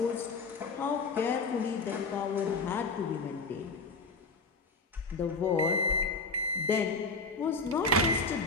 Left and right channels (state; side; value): quieter; right; 3.8 dB